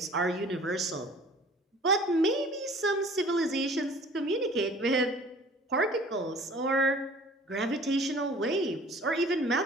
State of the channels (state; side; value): normal; both; correlation 0.49